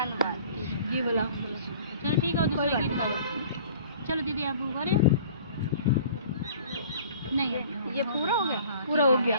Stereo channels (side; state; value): both; inverted; correlation -0.48